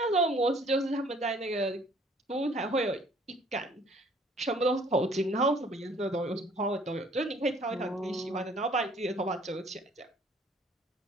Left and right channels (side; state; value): both; normal; correlation 0.57